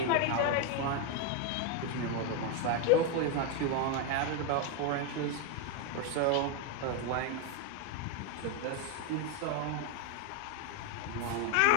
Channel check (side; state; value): both; different; correlation 0.02